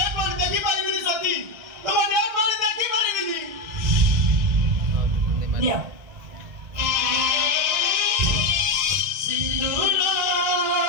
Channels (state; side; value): late; left; 2.0 ms